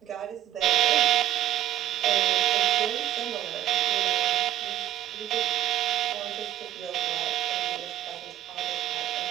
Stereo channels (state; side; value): quieter; left; 12.2 dB